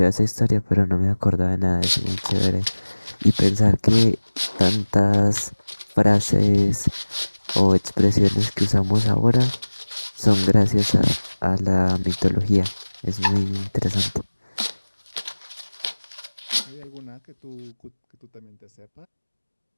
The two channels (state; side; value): inverted; both; correlation -1.00